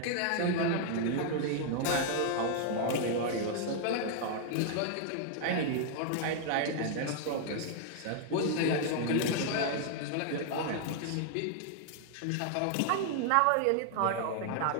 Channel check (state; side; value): different; both; correlation 0.00